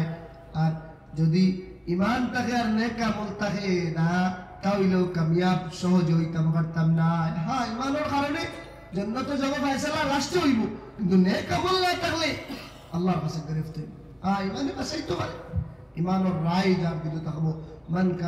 আর যদি ঈমান থাকে আর নেক আমল থাকে না তাহলেও কামিয়াব সহজ হইতাম পারতাম না। হ্যাঁ, ঈমানের কারণে জান্নাতে যাব ফয়সালা লাস্টে হইব, কিন্তু নেক আমল না থাকলে আল্লাহর কাছে গ্রেফত হইব। ঈমানে বাঁচাইতে পারে, ঈমানের রায় যার দিলে থাকবো মান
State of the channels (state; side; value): identical; both; correlation 1.00